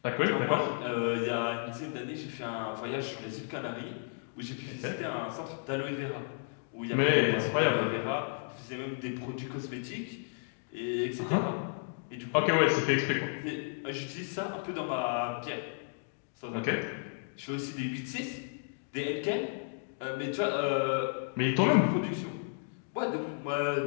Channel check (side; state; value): right; silent; digital silence